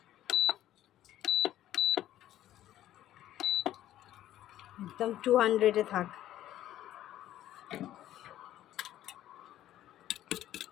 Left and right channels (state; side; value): quieter; right; 13.0 dB